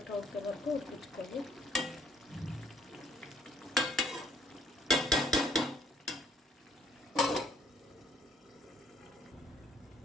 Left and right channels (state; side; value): normal; both; correlation 0.63